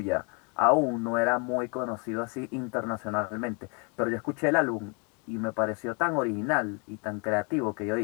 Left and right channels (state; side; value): quieter; right; 34.8 dB